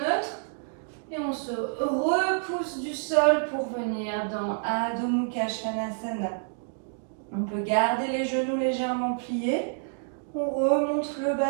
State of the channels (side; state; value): left; silent; digital silence